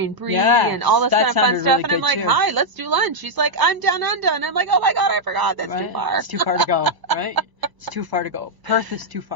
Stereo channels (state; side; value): late; left; 1.0 ms